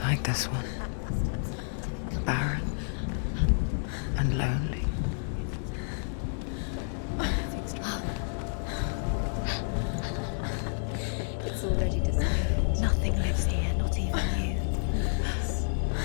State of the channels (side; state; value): right; silent; digital silence